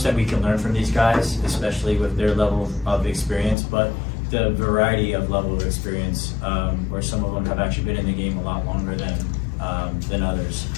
that we can learn from these guys, especially with their level of experience, but the variety of level of experience, where some of them have actually been in the game a lot longer than others.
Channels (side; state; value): right; drops out; at 3.6 s